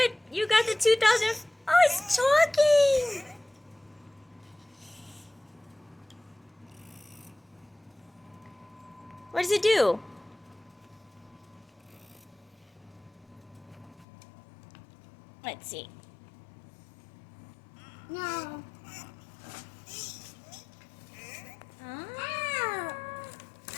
You got the 2000. Oh, it's talking. What does it do? Let's see. No. Ah.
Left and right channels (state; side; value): drops out; right; at 14.1 s